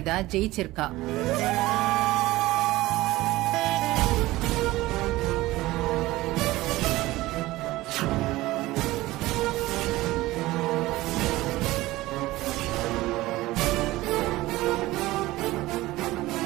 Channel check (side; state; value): left; quieter; 18.2 dB